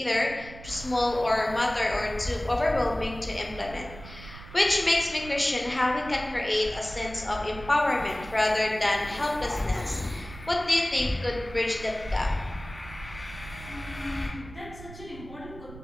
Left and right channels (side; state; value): right; noise; rumble, 15 dB below the sound